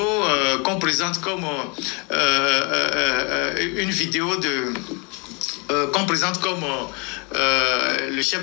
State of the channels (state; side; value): quieter; right; 31.3 dB